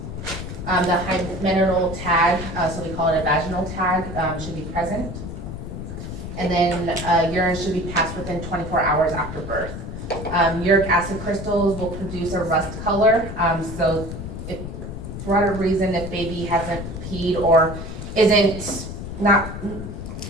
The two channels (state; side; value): noise; left; rumble, 8 dB below the sound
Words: The hymeneal tag, so we call it a vaginal tag, should be present. And then urine should be passed within 24 hours after birth. Uric acid crystals will produce a rust color. So if for whatever reason, if baby hasn't peed or isn't not